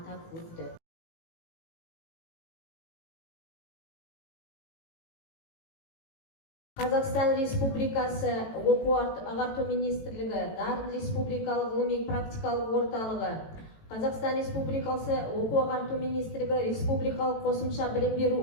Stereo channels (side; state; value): right; late; 18 ms